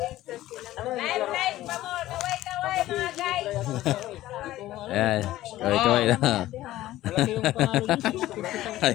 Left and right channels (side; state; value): right; quieter; 15.3 dB